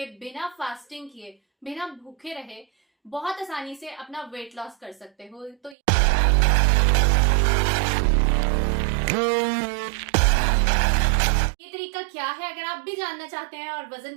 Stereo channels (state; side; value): drops out; left; at 5.8 s